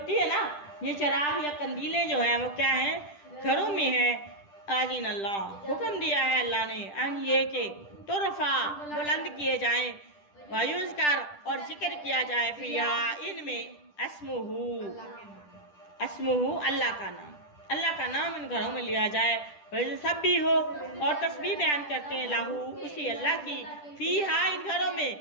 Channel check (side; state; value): right; late; 10 ms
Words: है ना, ये चिराग या कंदीलें जो है वो क्या है, घरों में है। आजीन अल्लाह, हुक्म दिया है अल्लाह ने, अन ये के तुरफा, बुलंद किए जाएं, वायुज कर, और जिक्र किया जाए, फिया, इनमें, अस्मुहू, अस्मुहू, अल्लाह का नाम, अल्लाह का नाम इन घरों में लिया जाए। वैसे सब भी हो, और तस्बीह बयान करते हैं लाहू, उसी अल्लाह की, फीहा, इन घरों